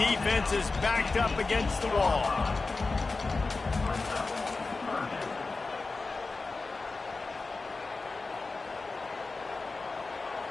is backed up against the wall.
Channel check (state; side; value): quieter; right; 3.8 dB